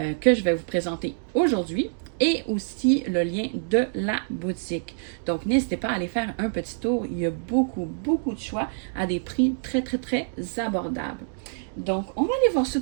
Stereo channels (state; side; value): silent; left; digital silence